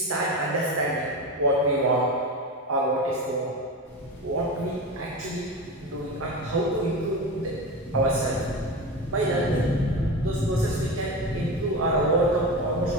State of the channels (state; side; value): normal; both; correlation 0.24